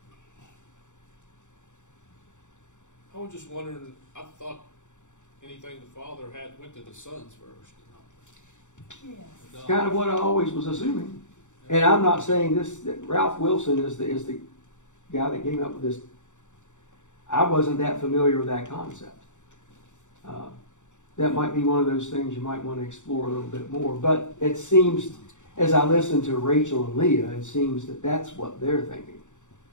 I was just wondering, I thought anything the father had went to the sons first. Yeah. It's kind of what I always was assuming. And I'm not saying this, that Ralph Wilson is the guy that came up with this. I wasn't that familiar with that concept. That might be one of those things you might want to explore a little bit more. But it seems, as I listen to Rachel and Leah, it seems that that's what they're thinking.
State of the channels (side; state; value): right; late; 0.85 ms